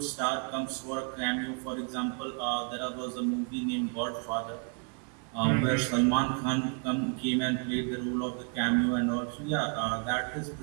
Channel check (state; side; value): quieter; left; 38.2 dB